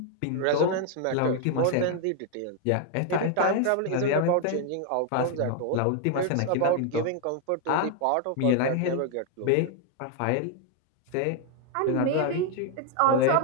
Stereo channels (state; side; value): different; both; correlation 0.00